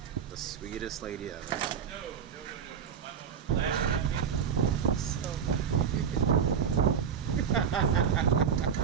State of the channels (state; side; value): quieter; left; 7.4 dB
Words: The sweetest lady ever. So you can.